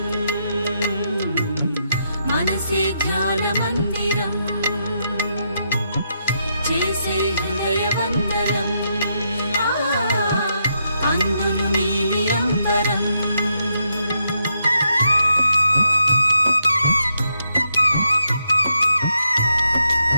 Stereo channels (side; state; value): both; inverted; correlation -0.80